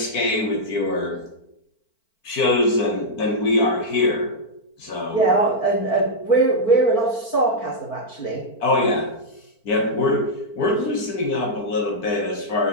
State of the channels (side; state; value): right; late; 4.5 ms